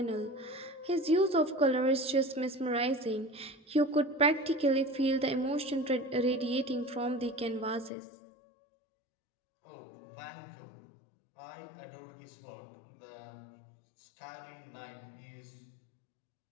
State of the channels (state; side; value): drops out; right; at 7.9 s